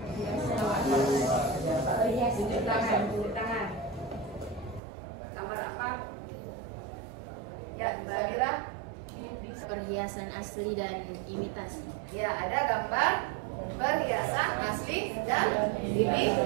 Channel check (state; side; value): drops out; left; at 4.8 s